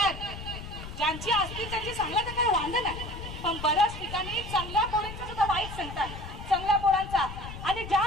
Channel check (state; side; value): noise; left; rumble, 10 dB below the sound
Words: ज्यांची असतील त्यांची सांगला तर काही वांध नाही. पण बऱ्याच ठिकाणी चांगल्या पोरांचा सुद्धा वाईट सांगतात, चांगल्या पोरांचा. आणि